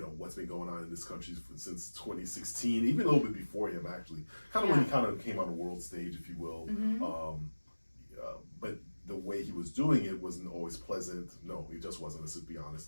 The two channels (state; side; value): inverted; both; correlation -1.00